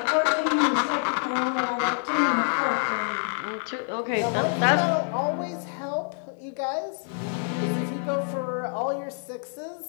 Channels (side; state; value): right; silent; 56 dB below the other